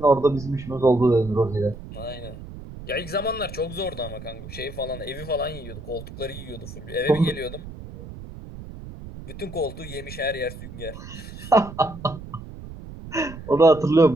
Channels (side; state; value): right; noise; rumble, 13 dB below the sound